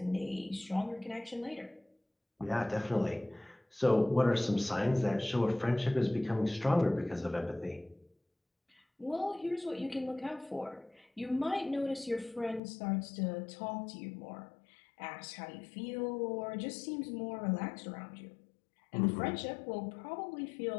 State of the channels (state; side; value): drops out; right; at 12.6 s